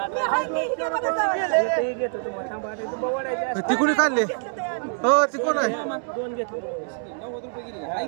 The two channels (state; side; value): silent; left; 62 dB below the other